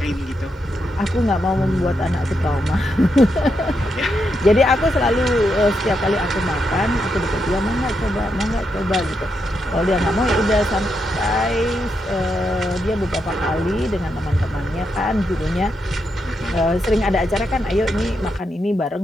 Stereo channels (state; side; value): normal; both; correlation 0.82